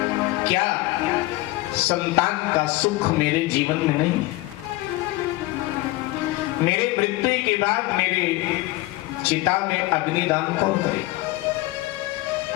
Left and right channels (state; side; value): quieter; right; 19.6 dB